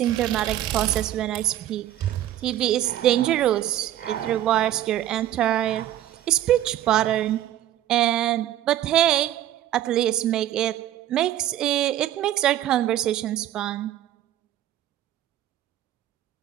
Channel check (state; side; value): quieter; left; 12.6 dB